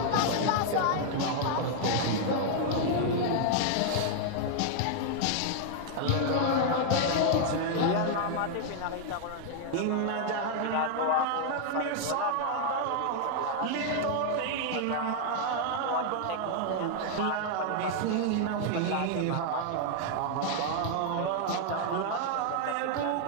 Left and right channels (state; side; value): different; both; correlation 0.00